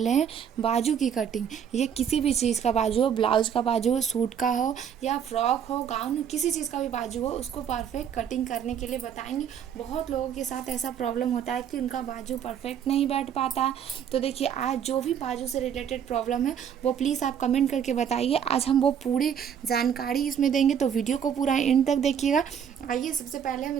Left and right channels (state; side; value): quieter; left; 8.3 dB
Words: हैं बाजू की कटिंग। ये किसी भी चीज़ का बाजू हो, ब्लाउज का बाजू हो, सूट का हो या फ्रॉक हो, गाउन हो, किसी चीज़ का भी बाजू हो, उसको परफेक्ट कटिंग करने के लिए बताएंगे। बहुत लोगों के साथ ऐसा प्रॉब्लम होता है कि उनका बाजू परफेक्ट नहीं बैठ पाता। तो देखिए, आज जो भी बाजू से रिलेटेड प्रॉब्लम है वो प्लीज़ आप कमेंट करके बताइए। आज हम वो पूरी जानकारी इसमें देंगे, तो वीडियो को पूरा एंड तक देखिएगा। आइए सबसे पहले हम